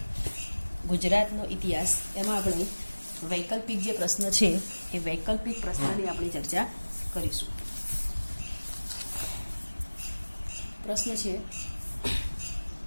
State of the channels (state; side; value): inverted; both; correlation -1.00